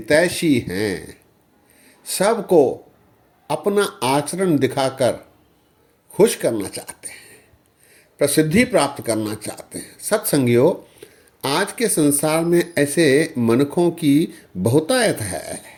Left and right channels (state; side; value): identical; both; correlation 1.00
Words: हैं, सबको अपना आचरण दिखाकर खुश करना चाहते हैं, प्रसिद्धि प्राप्त करना चाहते हैं। सत्संगियों, आज के संसार में ऐसे मनुष्यों की बहुतायत है।